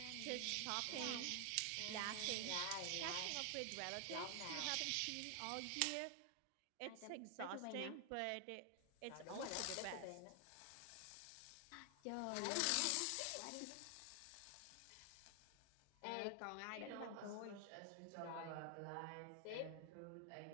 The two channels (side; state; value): both; different; correlation 0.00